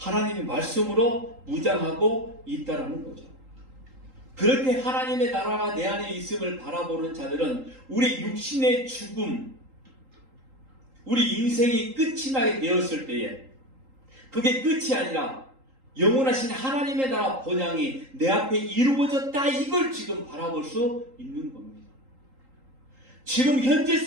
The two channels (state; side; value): late; left; 3.8 ms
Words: 말씀으로 무장하고 있다라는 거죠. 그렇게 하나님의 나라가 내 안에 있음을 바라보는 자들은 우리 육신의 죽음, 우리 인생이 끝이 나게 되었을 때에 그게 끝이 아니라 영원하신 하나님의 나라 본향이 내 앞에 이루어졌다, 이걸 지금 바라볼 수 있는 겁니다. 지금 현재